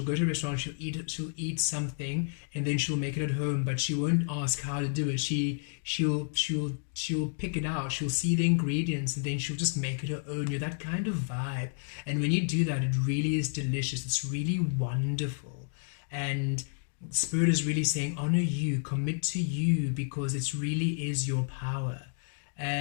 go to a restaurant, she'll eat something, and then she'll make it at home, but she won't ask how to do it. She'll pick it out. She'll see the ingredients, and then she'll just make it her own. You're that kind of vibe, and when you do that, it really is delicious. It's really wonderful, and Spirit is really saying, honor you, commit to you, because it really is your power.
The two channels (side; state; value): right; silent; digital silence